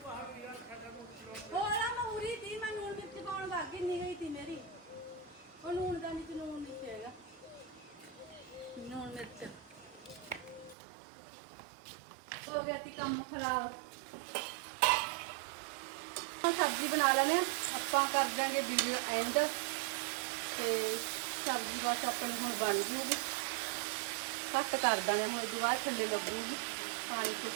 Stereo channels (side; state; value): left; drops out; at 10.8 s